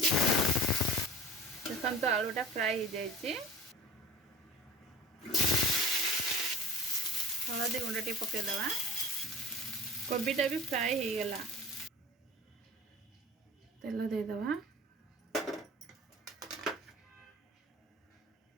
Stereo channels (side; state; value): both; normal; correlation 0.42